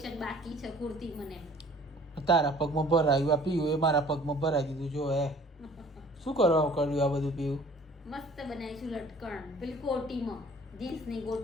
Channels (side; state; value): both; normal; correlation 0.52